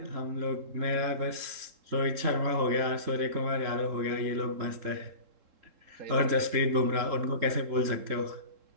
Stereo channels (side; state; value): left; late; 3.7 ms